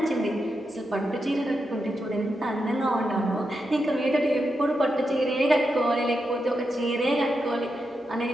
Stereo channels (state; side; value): normal; both; correlation 0.86